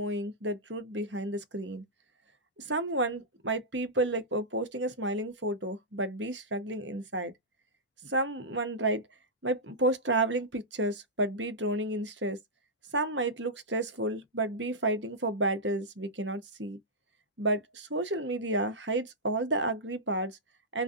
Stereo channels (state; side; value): normal; both; correlation -0.11